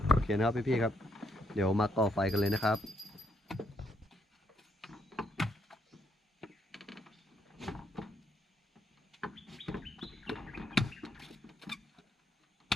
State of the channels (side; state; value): both; normal; correlation 0.75